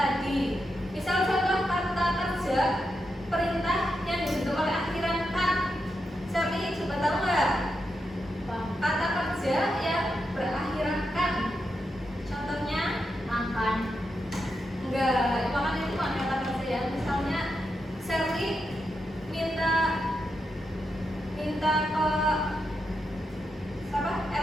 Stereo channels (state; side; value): normal; both; correlation 0.85